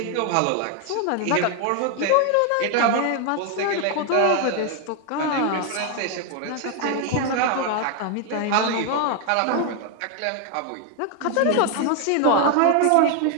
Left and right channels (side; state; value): both; different; correlation 0.01